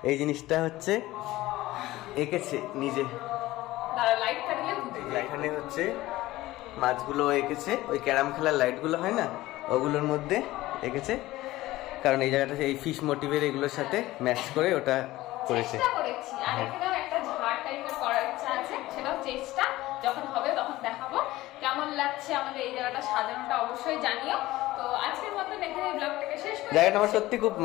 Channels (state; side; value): quieter; right; 17.3 dB